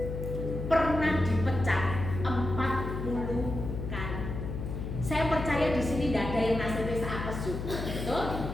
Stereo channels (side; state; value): left; noise; hum, 5 dB below the sound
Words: pernah dipecat 40 kali. Saya percaya di sini tidak ada yang nasibnya seapes juga, betul?